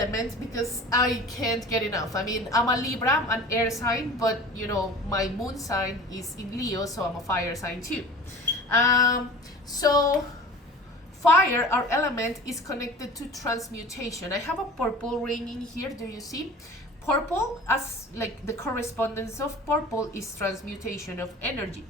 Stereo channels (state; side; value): normal; both; correlation 0.40